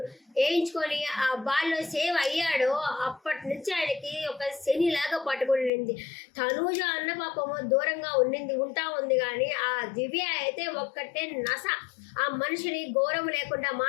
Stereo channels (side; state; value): right; drops out; at 5.7 s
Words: వేయించుకొని ఆ బాల్లో సేవ్ అయ్యాడో అప్పటి నుంచి ఆయనకి ఒక శనిలాగా పట్టుకునింది. తనూజ అన్న పాపము దూరంగా ఉంటా ఉంది కానీ ఆ దివ్య అయితే ఒక్కటే నస. ఆ మనిషిని గౌరవం లేకుండా